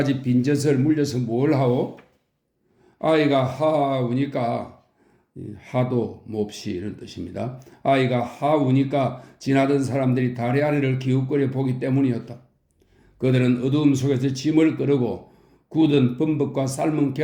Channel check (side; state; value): both; identical; correlation 1.00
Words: 빈젖을 물려서 뭘 하오? 아이가 하우니까, 하도 몹시 이런 뜻입니다. 아이가 하우니까 지나던 사람들이 다리 아래를 기웃거려 보기 때문이었다. 그들은 어두움 속에서 짐을 끌고 굳은 범벅과 삶은